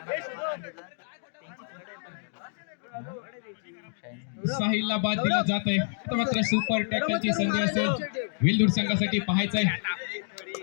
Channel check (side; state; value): right; silent; digital silence